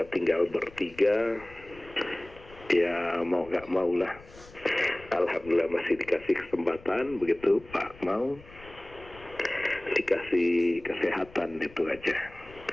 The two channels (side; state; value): left; noise; rumble, 21 dB below the sound